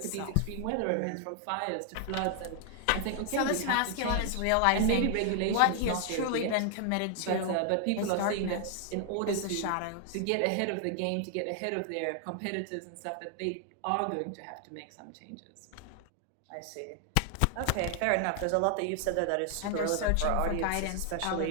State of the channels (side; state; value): both; different; correlation 0.00